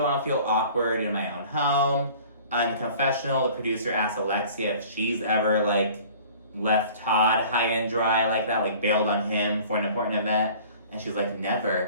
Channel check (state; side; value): inverted; both; correlation -0.48